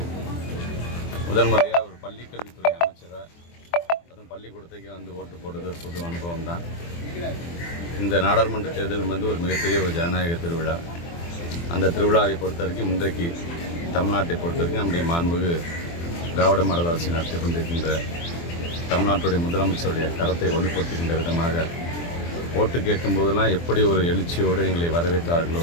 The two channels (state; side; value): late; right; 24 ms